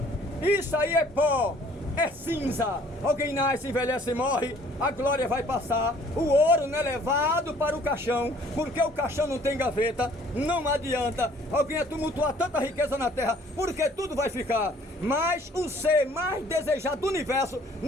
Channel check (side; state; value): both; normal; correlation 0.57